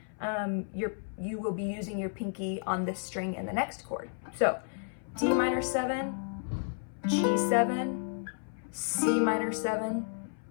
you will be using your pinky on this string in the next chord. So D minor 7, G7, C minor 7,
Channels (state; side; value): silent; right; 56 dB below the other